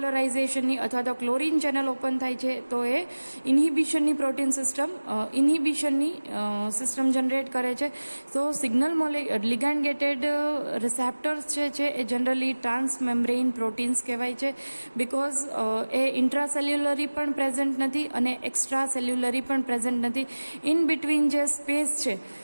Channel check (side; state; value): both; inverted; correlation -1.00